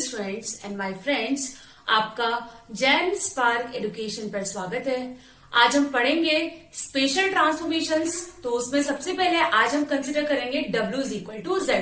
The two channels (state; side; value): identical; both; correlation 1.00